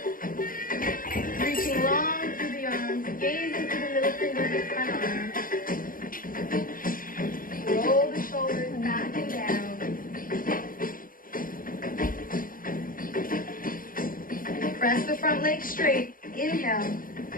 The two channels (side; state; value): right; late; 0.41 ms